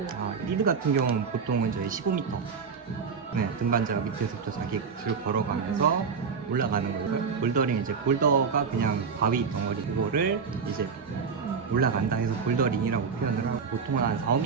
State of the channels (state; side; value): quieter; left; 5.7 dB